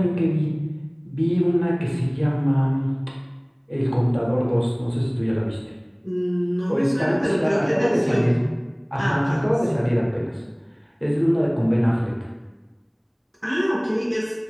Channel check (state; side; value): identical; both; correlation 1.00